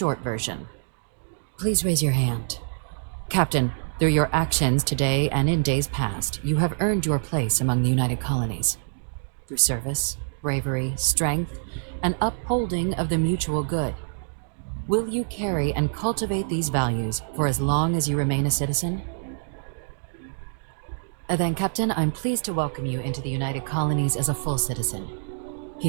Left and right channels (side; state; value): left; silent; digital silence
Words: version. Please raise your hand. Captain, through your actions today and in days past, you have earned your place among the United Colonies. Through service, bravery, strength, and upholding of the mutual good. Will you carry and cultivate these values for as long as you remain a citizen? Then, Captain, I'm pleased to welcome you into the United Colonies as a full citizen.